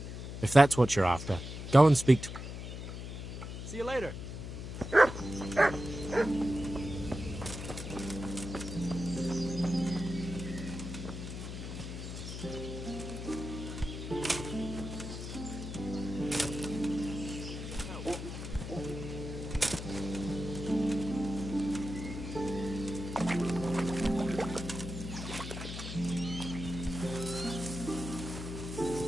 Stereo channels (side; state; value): left; noise; hum, 7 dB below the sound